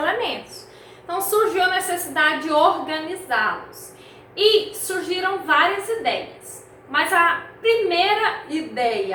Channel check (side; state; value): both; identical; correlation 1.00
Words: Então surgiu a necessidade de organizá-los. E surgiram várias ideias. Mas a primeira